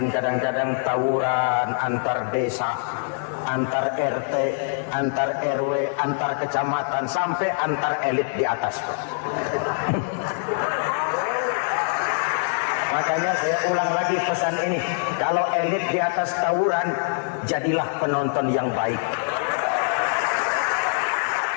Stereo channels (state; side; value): silent; right; 63 dB below the other